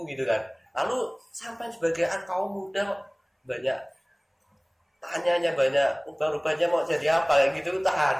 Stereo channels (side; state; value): both; identical; correlation 1.00